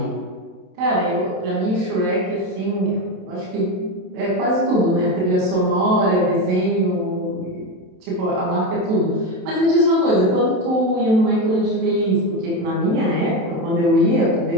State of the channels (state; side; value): late; left; 27 ms